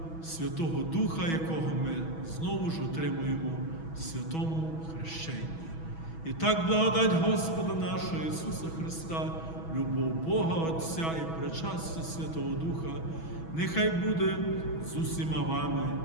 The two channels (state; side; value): late; right; 6.2 ms